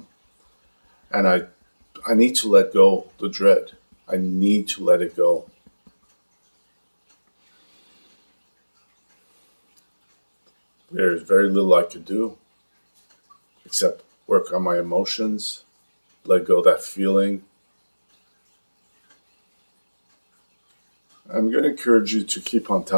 And I need to let go the dread. I need to let it go. There's very little I could do except work on my emotions, let go of that feeling. I'm going to encourage you to keep on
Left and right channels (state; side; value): inverted; both; correlation -1.00